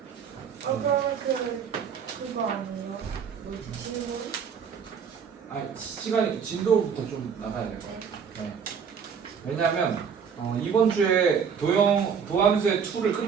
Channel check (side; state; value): left; quieter; 6.8 dB